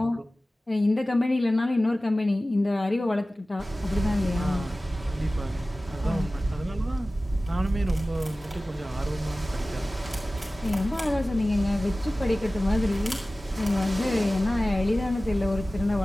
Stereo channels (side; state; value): both; normal; correlation 0.97